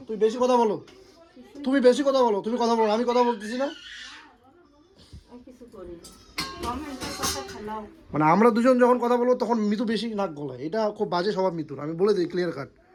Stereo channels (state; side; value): identical; both; correlation 1.00